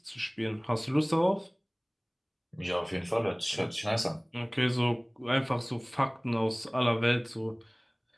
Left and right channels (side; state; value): both; identical; correlation 1.00